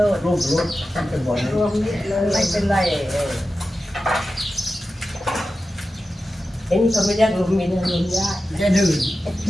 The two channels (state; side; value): normal; both; correlation 0.93